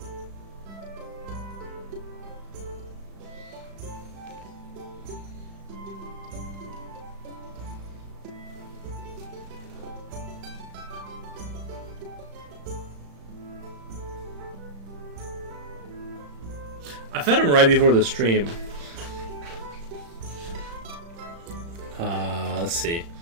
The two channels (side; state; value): left; late; 35 ms